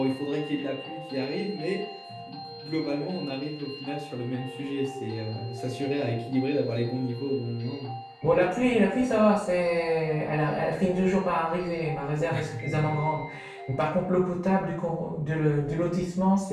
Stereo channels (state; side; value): identical; both; correlation 1.00